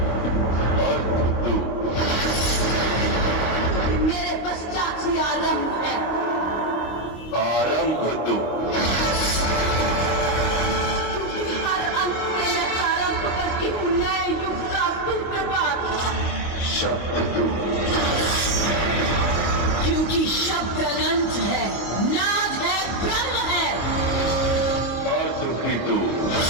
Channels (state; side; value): late; right; 25 ms